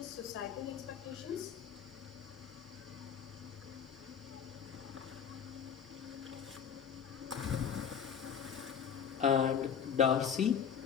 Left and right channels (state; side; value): quieter; right; 7.6 dB